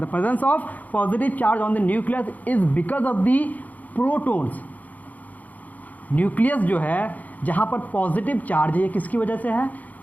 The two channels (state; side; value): late; right; 0.078 ms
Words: the presence of positive charge on the nucleus is because of the protons. Nucleus जो है जहाँ पर पॉजिटिव चार्ज है, ये किसकी वजह से है?